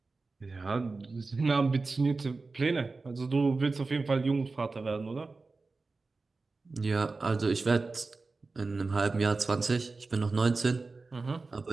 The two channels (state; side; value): quieter; left; 3.8 dB